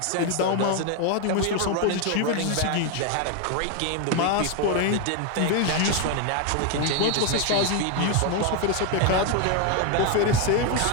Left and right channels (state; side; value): different; both; correlation 0.01